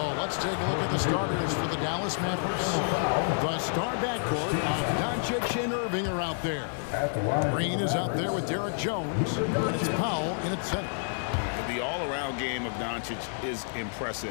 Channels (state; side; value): silent; right; 59 dB below the other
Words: let's take a look at the starters for the Dallas Mavericks. The star backcourt of Doncic and Irving are out there. Green is out there with Derek Jones, and it's Powell in at center. The all-around game of Doncic is